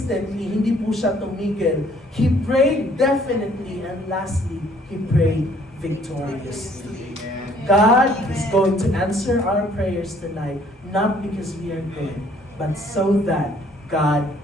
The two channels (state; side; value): normal; both; correlation 0.60